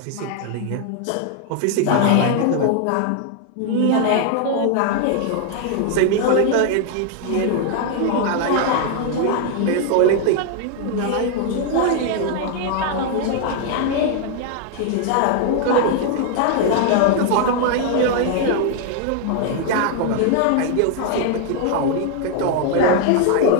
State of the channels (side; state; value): both; different; correlation 0.00